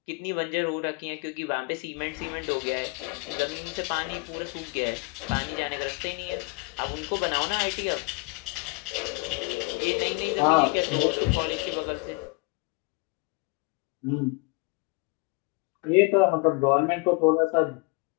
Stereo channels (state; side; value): quieter; right; 28.9 dB